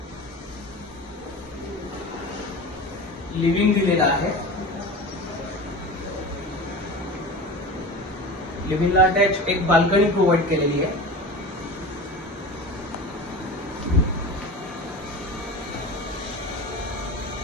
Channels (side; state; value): both; normal; correlation 0.32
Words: लिव्हिंग दिलेला आहे। लिव्हिंगला अटॅच एक बाल्कनी प्रोव्हाइड केलेली आहे।